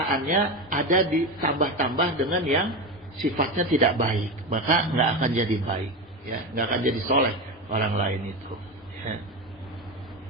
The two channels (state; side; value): normal; both; correlation 0.19